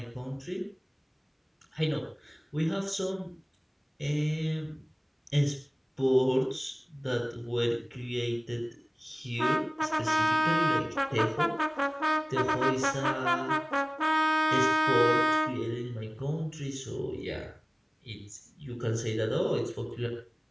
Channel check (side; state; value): both; identical; correlation 1.00